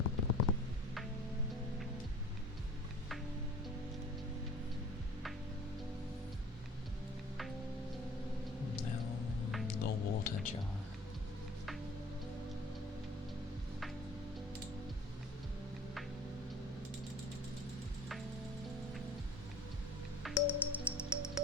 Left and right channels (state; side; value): normal; both; correlation 0.45